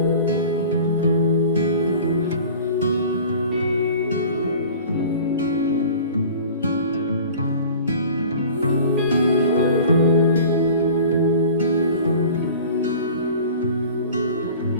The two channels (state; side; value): inverted; both; correlation -0.42